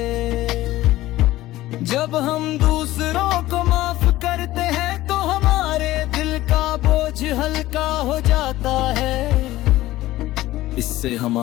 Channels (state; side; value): quieter; right; 16.2 dB